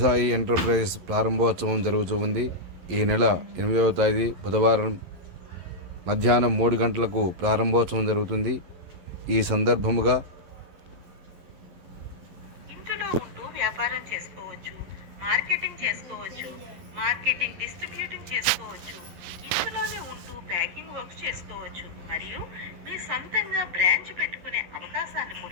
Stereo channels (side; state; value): left; late; 11 ms